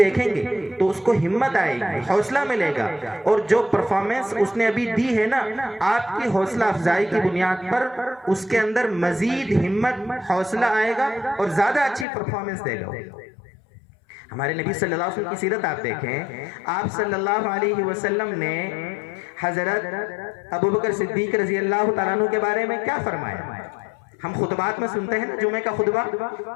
گے تو اس کو ہمت آئے گی، حوصلہ ملے گا، اور جو پرفارمنس اس نے ابھی دی ہے نا، آپ کی حوصلہ افزائی کی بنیاد پر اس کے اندر مزید ہمت، حوصلہ آئے گا اور زیادہ اچھی پرفارمنس دے گا. ہمارے نبی صلی اللہ علیہ وسلم کی سیرت آپ دیکھیں. آپ صلی اللہ علیہ وسلم نے حضرت ابوبکر صدیق رضی اللہ تعالیٰ عنہ کے بارے میں کیا فرمایا؟ ہم خطبات میں سنتے ہیں نا جمعہ کا خطبہ،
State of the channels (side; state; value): right; drops out; at 12.1 s